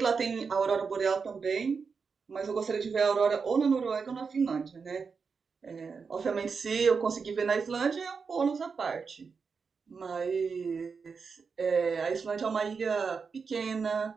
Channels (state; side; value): quieter; left; 5.4 dB